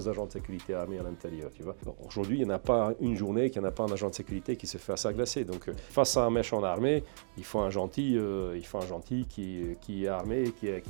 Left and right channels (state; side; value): silent; left; digital silence